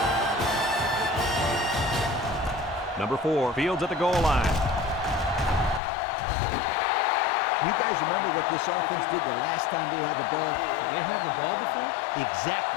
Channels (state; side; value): drops out; right; at 5.8 s